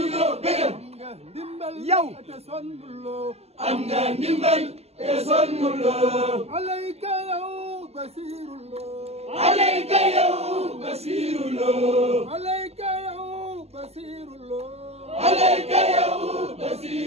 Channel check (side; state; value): left; late; 0.30 ms